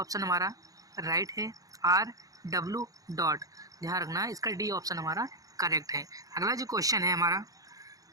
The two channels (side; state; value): left; late; 0.17 ms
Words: हमारा राइट है। RW. ध्यान रखना, इसका डी ऑप्शन हमारा करेक्ट है। अगला जो क्वेश्चन है हमारा,